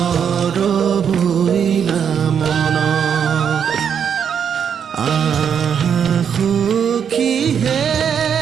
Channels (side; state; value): left; quieter; 7.7 dB